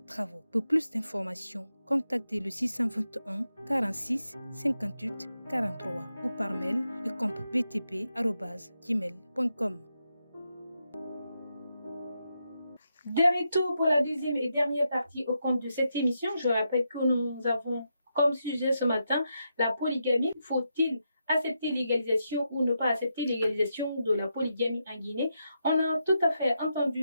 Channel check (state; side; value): inverted; both; correlation -0.84